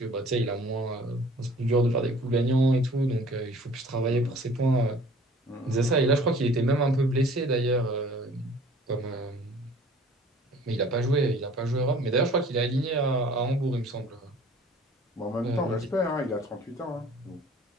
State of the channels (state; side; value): normal; both; correlation 0.50